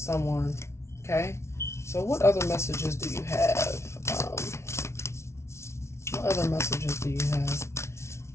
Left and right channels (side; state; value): right; late; 0.13 ms